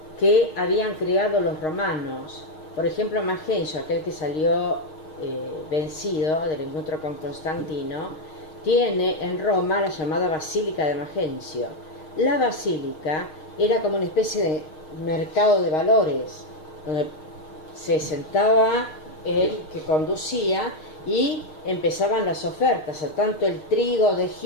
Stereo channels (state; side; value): late; right; 6.4 ms